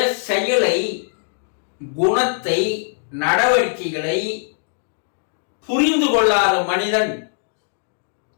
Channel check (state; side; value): silent; right; digital silence